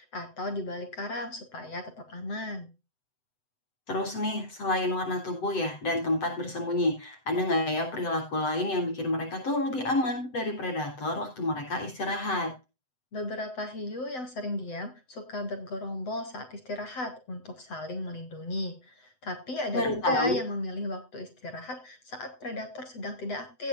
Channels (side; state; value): right; late; 7.9 ms